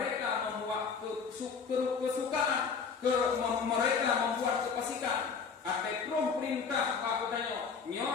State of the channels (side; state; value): right; quieter; 5.7 dB